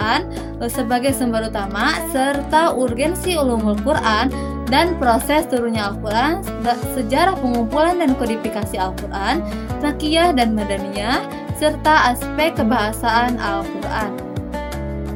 sebagai sumber utama, serta urgensi ulumul Quran dan proses turunnya Al-Quran, sejarah pengumpulan dan kodifikasi Al-Quran, Makiyah dan Madaniyah, serta aspek kebahasaan Al-Quran.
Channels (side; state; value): both; identical; correlation 1.00